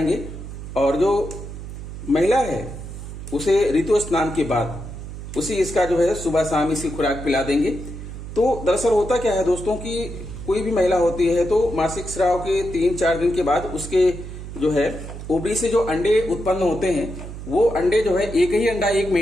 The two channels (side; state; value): right; noise; hum, 10 dB below the sound